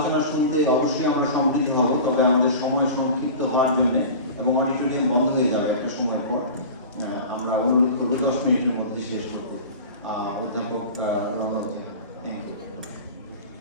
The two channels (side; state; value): both; inverted; correlation -0.35